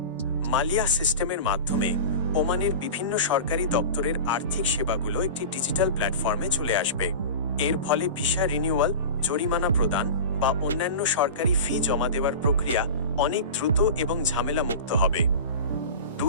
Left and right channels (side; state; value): both; inverted; correlation -0.31